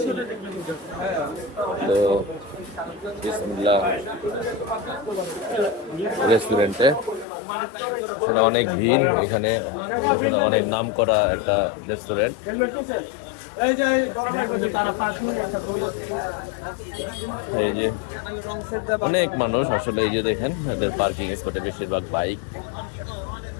তো বিসমিল্লাহ রেস্টুরেন্টে, এখানে অনেক ভিড়, এখানে অনেক নাম করা একটা রেস্টুরেন্ট। এই যে অনেক মানুষ আসলে, এই যে দেখেন এদের পার্কিং স্পটে বেশিরভাগ বাইক,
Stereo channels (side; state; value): right; drops out; at 7.2 s